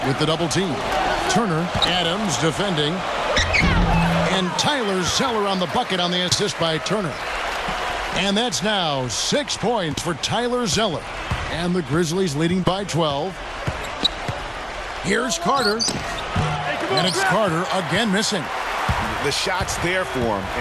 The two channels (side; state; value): both; identical; correlation 1.00